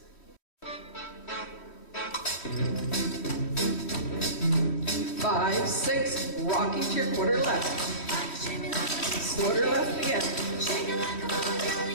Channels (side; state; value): right; late; 3.1 ms